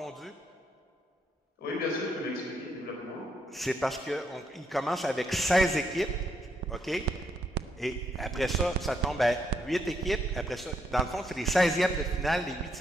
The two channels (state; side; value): normal; both; correlation 0.77